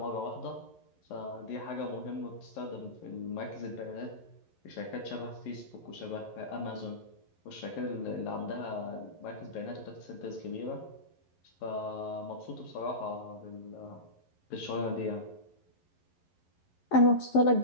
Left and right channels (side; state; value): right; late; 11 ms